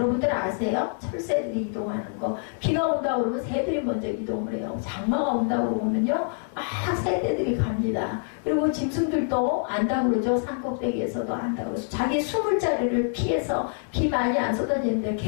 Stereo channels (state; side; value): silent; right; 61 dB below the other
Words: 아세요? 철새들이 이동하는 거. 비가 온다고 그러면 새들이 먼저 이동을 해요. 장마가 온다고 그러면요 막 새들이 갑니다. 그리고 짐승들도 안다고 그러죠. 산꼭대기에서도 안다고 그러죠. 자기 숨을 자리를 피해서 비 많이 안 쏟아지는데